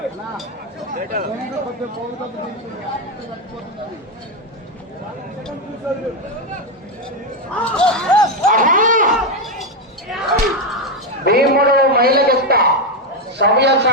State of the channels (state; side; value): normal; both; correlation 0.07